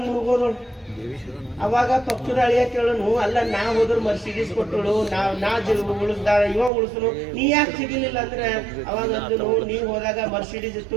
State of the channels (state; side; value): drops out; left; at 6.7 s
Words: ಮುಳುಗೋದಳು. ಅವಾಗ ಪಕ್ಕದ ಅಳಿಯ ಕೇಳನು, ಅಲ್ಲ ನಾ ಹೋದ್ರು ಮರ್ಸಿಡೀಸ್ ಕೊಟ್ಟಳು, ನಾ ಉಳಿಸ್ದ, ಇವ ಉಳಿಸನು, ನೀ ಯಾಕೆ ಸಿಗಲಿಲ್ಲ ಅಂದ್ರೆ, ಅವಾಗ ಅಂದನು, ನೀ ಹೋದಾಗ ಮರ್ಸಿಡೀಸ್ ಇತ್ತು,